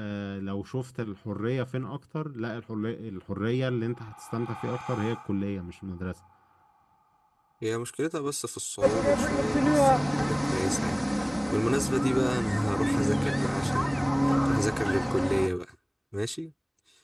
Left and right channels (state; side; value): identical; both; correlation 1.00